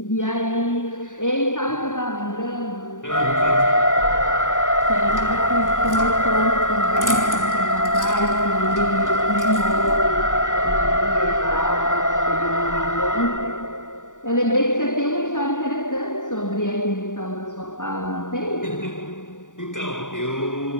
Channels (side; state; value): right; late; 0.87 ms